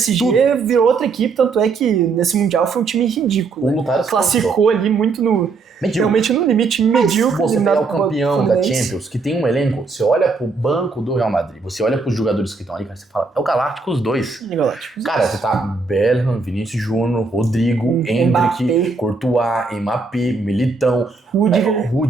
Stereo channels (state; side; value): quieter; left; 4.2 dB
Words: virou outra equipe. Tanto é que nesse Mundial foi um time ridículo. Né? Classificou ali muito no... Realmente no limite medíocre. Você pegar o campeão da Champions, que tem um elenco, você olha pro banco do Real Madrid, você olha pros jogadores que estão ali, cara, você fala, é o Galáctico os dois. Cara, você tá Bellingham, Vinícius Júnior, Rodrigo, Endrick, Courtois, Mbappé, Militão,